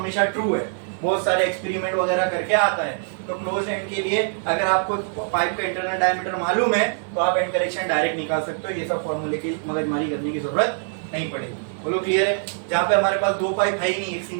ट्रू है, बहुत सारे एक्सपेरिमेंट वगैरह करके आता है। तो क्लोज एंड के लिए अगर आपको पाइप का इंटरनल डायमीटर मालूम है तो आप एंड करेक्शन डायरेक्ट निकाल सकते हो, ये सब फॉर्मूले की मगजमारी करने की जरूरत नहीं पड़ेगी। बोलो क्लियर है। जहाँ पे हमारे पास दो पाइप है ही नहीं, एक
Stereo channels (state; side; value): silent; left; digital silence